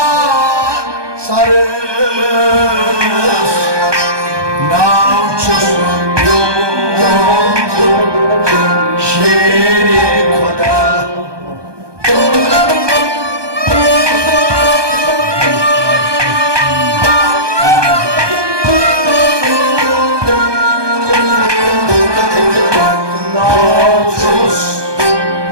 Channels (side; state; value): left; late; 1.2 ms